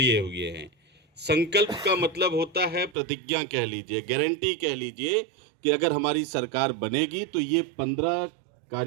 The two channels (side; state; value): left; drops out; at 3.0 s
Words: हुए हैं। संकल्प का मतलब होता है प्रतिज्ञा कह लीजिए, गारंटी कह लीजिए कि अगर हमारी सरकार बनेगी तो ये 15